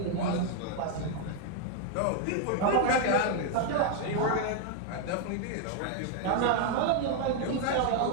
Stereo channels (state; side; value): different; both; correlation 0.01